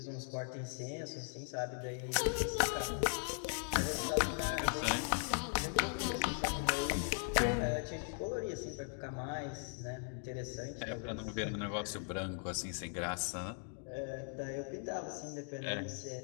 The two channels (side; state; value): right; silent; 52 dB below the other